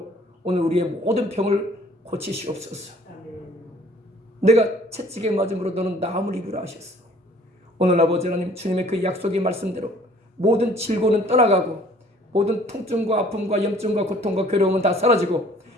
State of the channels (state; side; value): normal; both; correlation 0.54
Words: 오늘 우리의 모든 병을 고치시옵소서. 내가 채찍에 맞음으로 너는 나음을 입으라 하셨어. 오늘 아버지 하나님 주님의 그 약속의 말씀대로 모든 질고는 떠나가고 모든 통증과 아픔과 염증과 고통과 괴로움은 다 사라지고